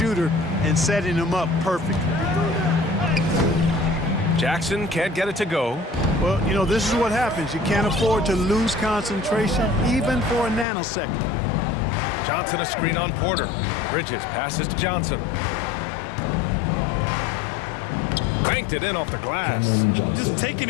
and setting him up perfectly. Jackson can't get it to go. Well, you know, this is what happens. You can't afford to lose concentration, even for a nanosecond. Johnson a screen on Porter. Bridges passes to Johnson. Banked it in off the glass. Just taking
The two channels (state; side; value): drops out; right; at 10.7 s